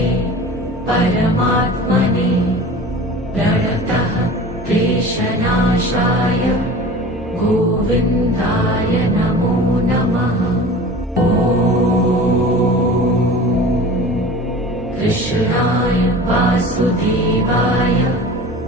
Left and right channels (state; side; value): normal; both; correlation 0.38